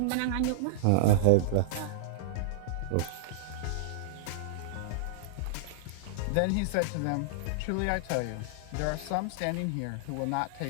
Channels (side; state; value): both; different; correlation -0.02